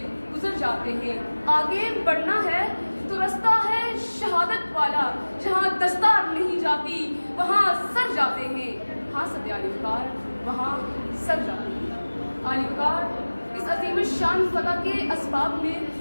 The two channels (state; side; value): inverted; both; correlation -1.00